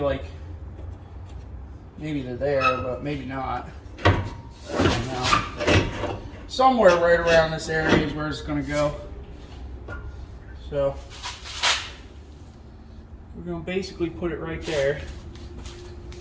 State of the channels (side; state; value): both; identical; correlation 1.00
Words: there, but maybe not. I don't know. Somewhere right around this area is where it's gonna go. So we're gonna basically put it right there.